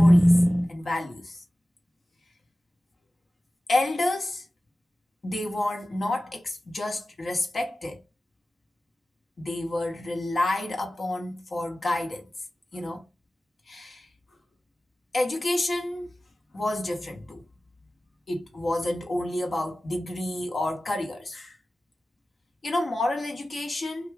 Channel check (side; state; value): both; normal; correlation 0.96